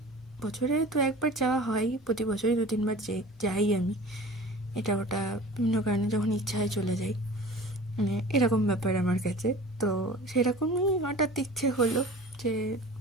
বছরে তো একবার যাওয়া হয়, প্রতি বছরই 2-3 বার যাই আমি। এটা ওটা বিভিন্ন কারণে যখন ইচ্ছা হয় চলে যাই, মানে এরকম ব্যাপার আমার কাছে। তো সেরকমই হঠাৎ ইচ্ছে হলো যে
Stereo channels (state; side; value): normal; both; correlation 0.41